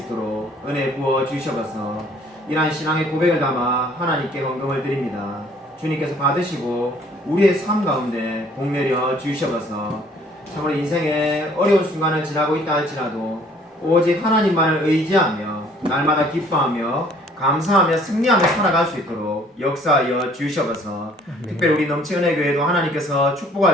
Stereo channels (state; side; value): normal; both; correlation 0.58